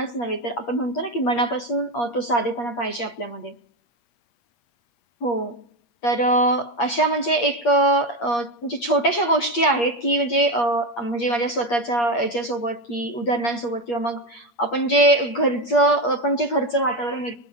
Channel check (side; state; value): right; late; 8.5 ms